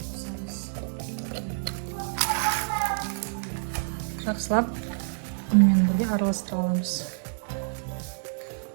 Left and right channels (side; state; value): left; silent; digital silence